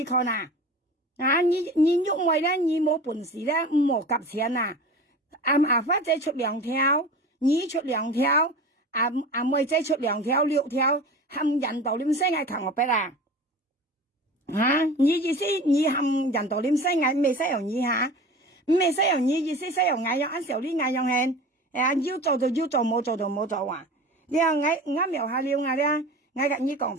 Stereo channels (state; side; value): normal; both; correlation 0.36